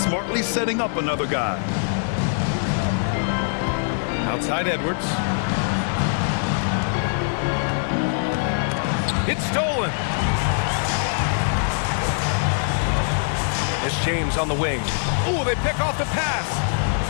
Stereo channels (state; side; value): silent; right; 64 dB below the other